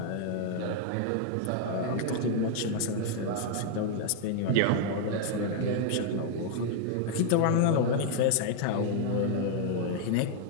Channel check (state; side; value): different; both; correlation 0.00